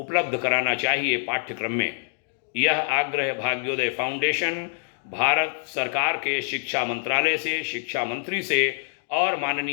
कराना चाहिए पाठ्यक्रम में। यह आग्रह भाग्योदय फाउंडेशन भारत सरकार के शिक्षा मंत्रालय से, शिक्षा मंत्री से और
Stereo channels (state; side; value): silent; right; digital silence